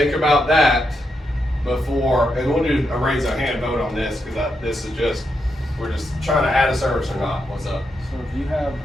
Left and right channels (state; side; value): normal; both; correlation 0.83